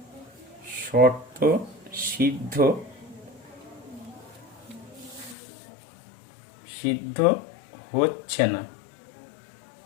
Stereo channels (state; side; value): drops out; right; at 5.4 s